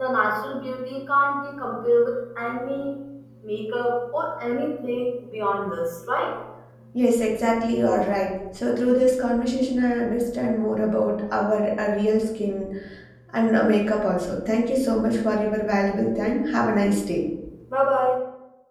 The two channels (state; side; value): identical; both; correlation 1.00